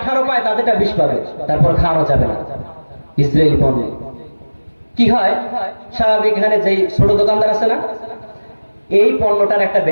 পায়, তাদেরটা 20 পাবে, তারপর খাওয়ানো যাবে না ইসরায়েলি পণ্য। কি হয়, স্বাভাবিক এখানে যেই ছোট দোকানদার আছে না, এই পণ্যটার একটা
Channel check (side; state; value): both; inverted; correlation -1.00